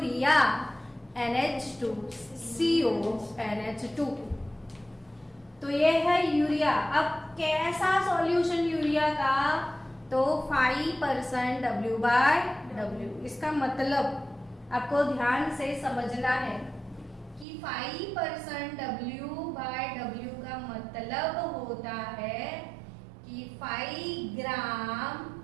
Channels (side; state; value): left; drops out; at 17.4 s